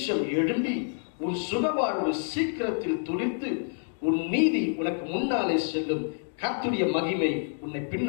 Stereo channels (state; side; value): silent; right; 59 dB below the other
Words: எழும்பி உன் சுகவாழ்வு சீக்கிரத்தில் துளிர்த்து உன் நீதி உனக்கு முன்னாலே செல்லும், கர்த்தருடைய மகிமை உன்னை